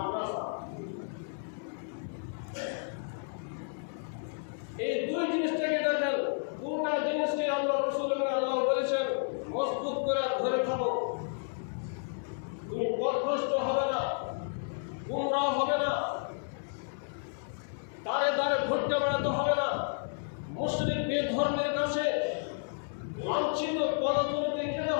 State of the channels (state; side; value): silent; right; digital silence